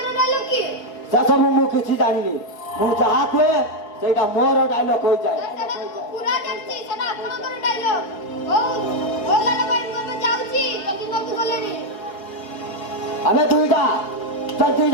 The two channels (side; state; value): right; late; 5.0 ms